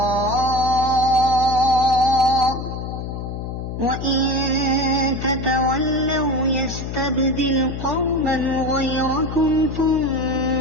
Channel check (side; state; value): left; noise; hum, 6 dB below the sound